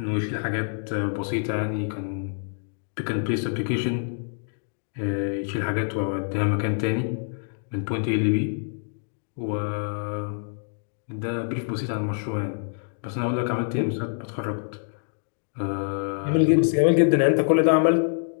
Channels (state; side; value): silent; right; digital silence